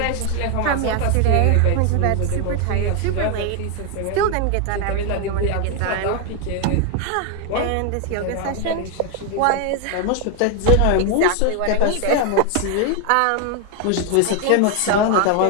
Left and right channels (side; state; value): both; different; correlation 0.01